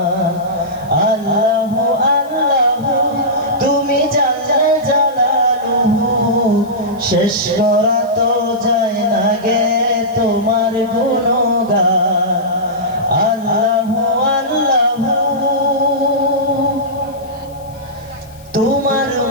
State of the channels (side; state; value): left; noise; hiss, 26 dB below the sound